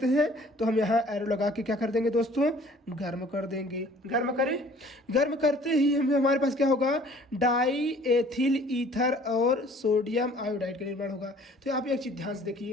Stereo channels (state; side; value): normal; both; correlation 0.53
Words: हैं, तो हम यहाँ एरो लगा के क्या कर देंगे दोस्तों, गर्म कर देंगे। गर्म करें, गर्म करते ही हमारे पास क्या होगा, डाई एथिल ईथर और सोडियम आयोडाइड का निर्माण होगा। तो आप एक चीज़ ध्यान से